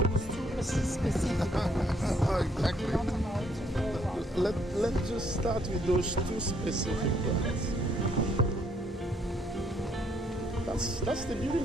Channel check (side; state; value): both; normal; correlation 0.69